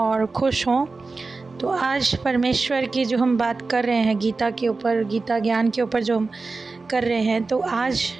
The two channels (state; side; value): quieter; left; 3.9 dB